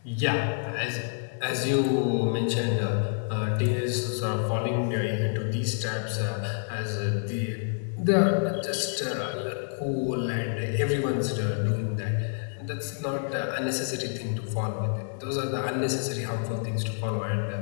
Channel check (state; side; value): silent; right; 59 dB below the other